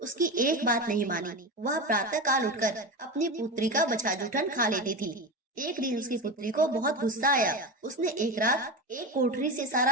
एक बात नहीं मानी। वह प्रातः काल उठकर अपनी पुत्री का बछा जूठन खा लेती थी। एक दिन उसकी पुत्री को बहुत गुस्सा आया। उसने एक रात एक कोठरी से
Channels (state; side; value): normal; both; correlation 0.21